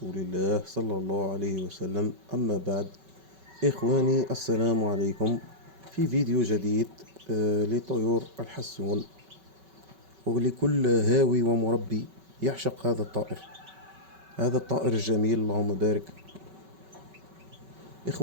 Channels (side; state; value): left; late; 5.3 ms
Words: الله صلى الله عليه وسلم. أما بعد، إخواني السلام عليكم في فيديو جديد لطيور الحسون، ولكل هاوي ومربي يعشق هذا الطائر الجميل. اللهم بارك.